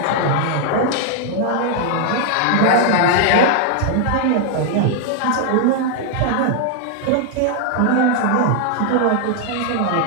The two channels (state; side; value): different; both; correlation 0.00